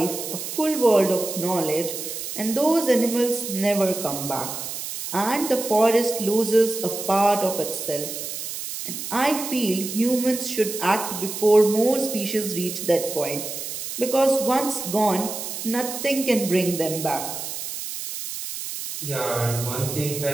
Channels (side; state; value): right; noise; hiss, 7 dB below the sound